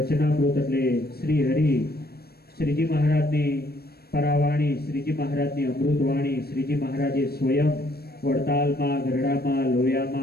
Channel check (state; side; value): late; right; 0.46 ms